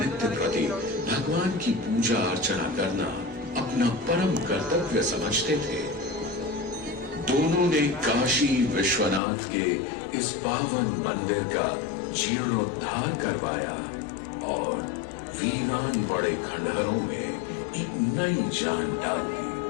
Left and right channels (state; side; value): drops out; right; at 9.2 s